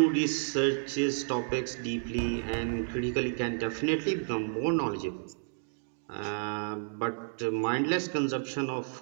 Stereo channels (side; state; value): left; silent; digital silence